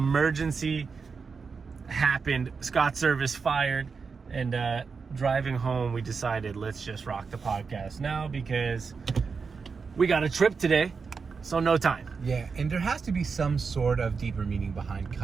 happened. Scott Servais fired, and driving home, we decided let's just rock the podcast now because we got a trip today, so no time. Yeah, and there has to be some sort of deeper meaning behind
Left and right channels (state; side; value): quieter; left; 5.2 dB